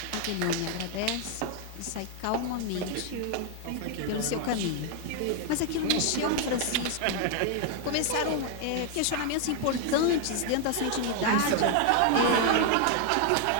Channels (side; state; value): both; different; correlation 0.00